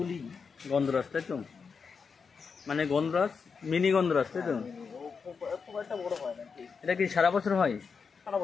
গন্ধরাজ, তাই তো? মানে গন্ধরাজ, মিনি গন্ধরাজ, তাই তো? খুব একটা বড় হয় না, এটা কি সারা বছর হয়? সারা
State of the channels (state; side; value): quieter; right; 5.6 dB